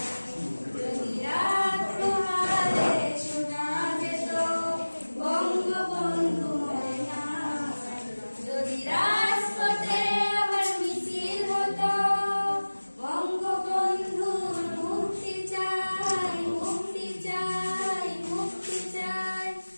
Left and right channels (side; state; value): both; inverted; correlation -1.00